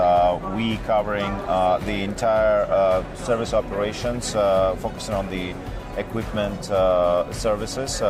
We covering the entire service operations, focusing on the equipment services,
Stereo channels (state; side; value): identical; both; correlation 1.00